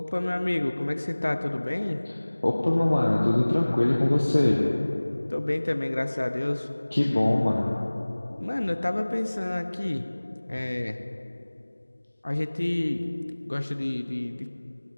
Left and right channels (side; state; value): both; inverted; correlation -1.00